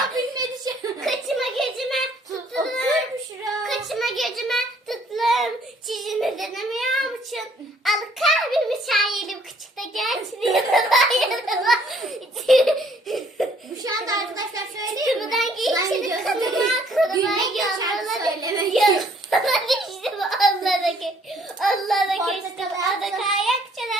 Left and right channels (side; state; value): both; normal; correlation 0.62